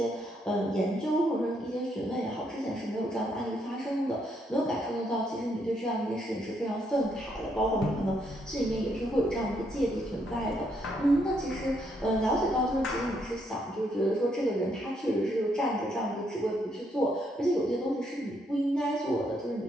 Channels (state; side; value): normal; both; correlation 0.75